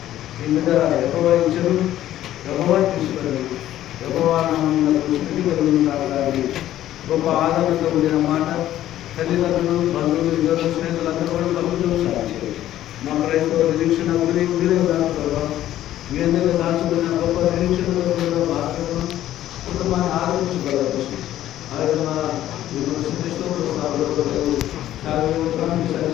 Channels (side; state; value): right; quieter; 13.0 dB